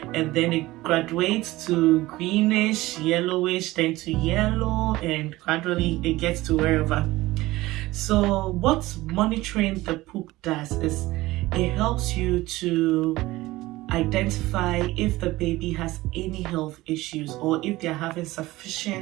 And then it graduates to greenish, yellowish, then to yellow, and gradually it gets to wherever. So what monitoring the poop does is it helps you to identify if the baby has any health issues or if they're having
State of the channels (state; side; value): quieter; left; 18.4 dB